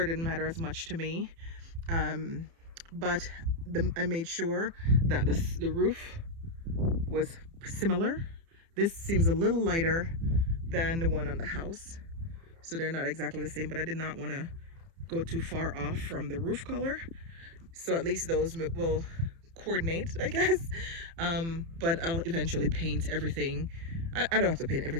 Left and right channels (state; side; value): late; left; 30 ms